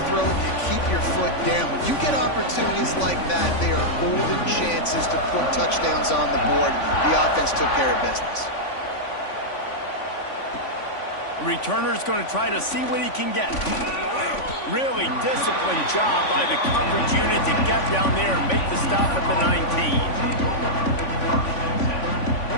throat, you keep your foot down. When you get opportunities like that, they are golden chances to put touchdowns on the board. The offense took care of business. Returner's going to try to see what he can get. Really disciplined job by the coverage unit to get down there and make the stop at the 19.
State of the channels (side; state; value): right; late; 3.5 ms